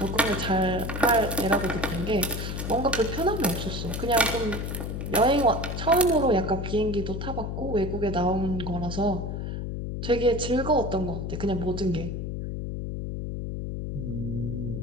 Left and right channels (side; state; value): left; noise; hum, 4 dB below the sound